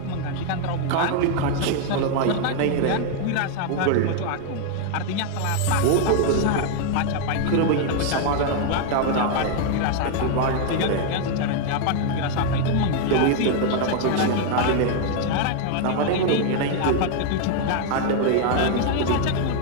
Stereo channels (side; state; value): both; different; correlation 0.00